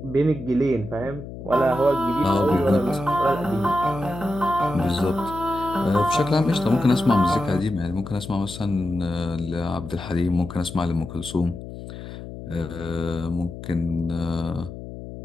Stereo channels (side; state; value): left; noise; hum, 11 dB below the sound